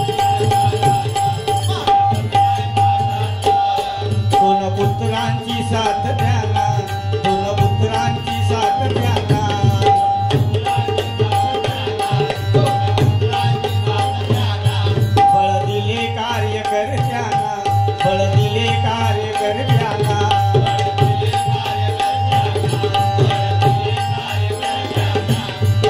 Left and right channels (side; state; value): both; identical; correlation 1.00